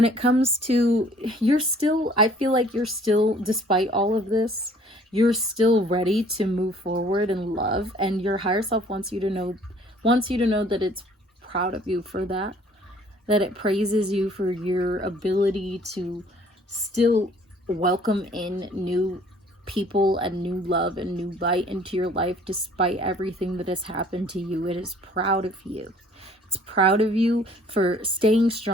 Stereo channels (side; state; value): both; normal; correlation 0.56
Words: it comes to, you're still, I feel like you're still, despite all of this, you're still ready to move forward in love, and your higher self wants you to know that it's proud of you for that it praises you for your ability to still welcome in new people and new love and new light into your life despite everything that has happened to you. It is proud of you. It's proud of you for staying